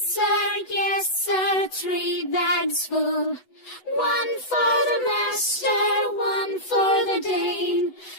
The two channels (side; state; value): right; late; 8.0 ms